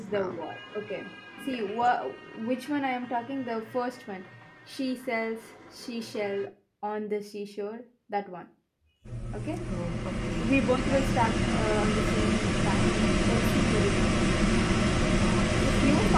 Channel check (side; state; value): both; identical; correlation 1.00